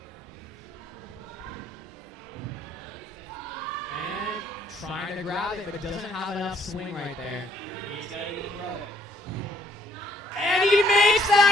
And trying to grab it, but doesn't have enough swing right there. He's got to throw it. And he makes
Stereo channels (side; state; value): both; normal; correlation 0.65